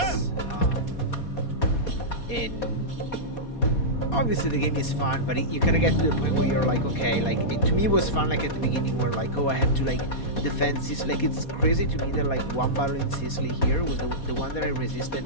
And obviously the game is fun, but you kind of get to the point where you're like, okay, like to me it was fun, like at the beginning where like, oh, I had to like defend Sicily. Like it's crazy to me that like one battle in Sicily here was the one that I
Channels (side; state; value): right; late; 4.2 ms